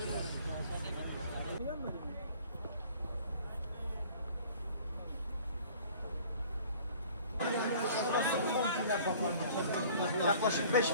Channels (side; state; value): both; inverted; correlation -0.49